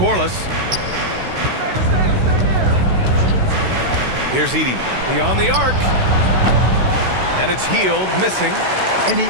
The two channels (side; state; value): left; late; 16 ms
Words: Here's Edey. Beyond the arc. And it's Hield missing. And he